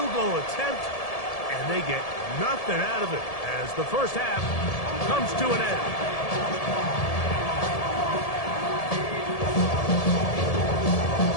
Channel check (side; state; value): right; late; 1.7 ms